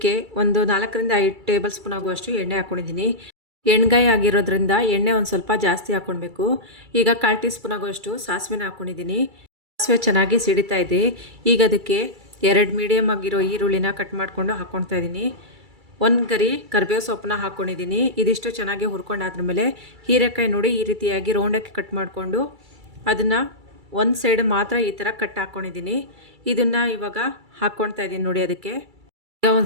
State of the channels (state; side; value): late; left; 2.3 ms